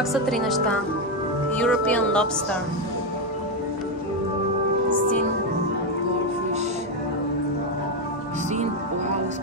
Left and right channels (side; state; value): both; normal; correlation 0.05